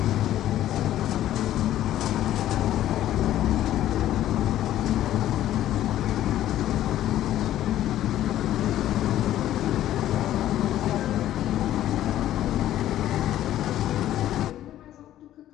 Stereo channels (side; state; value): right; quieter; 12.8 dB